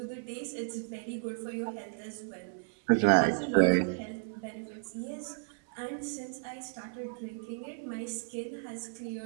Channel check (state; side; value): silent; left; digital silence